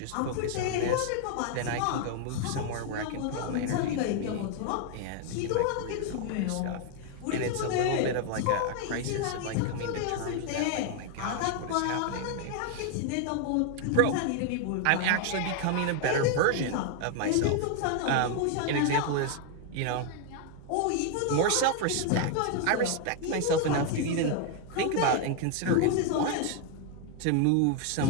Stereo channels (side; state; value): both; different; correlation 0.00